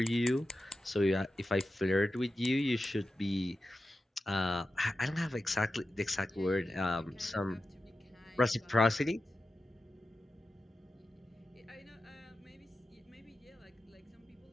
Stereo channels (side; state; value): both; normal; correlation 0.92